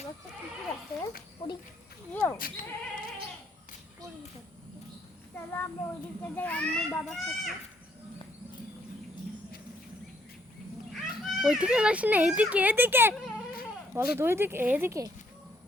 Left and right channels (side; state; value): both; normal; correlation 0.69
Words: একটা কুকুর আছে পুরি ইয়েও চলো আমরা ওই দিকটা যাই আম্মু বাবার সাথে ওইদিকে যাস না এইদিকে এদিকে বলো তো ওইদিকে এদিকে